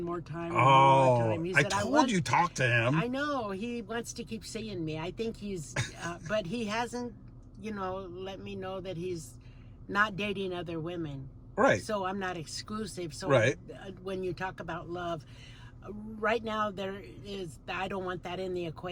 more time. And Oh, one more time. He I said, told want- you talk to him. I know. He wants to keep seeing me. I think he's, but he hasn't, let me know that he's not dating other women. Right. So I'm not exclusive. So Right. When you talk about love, right now I don't want that in the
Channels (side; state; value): both; identical; correlation 1.00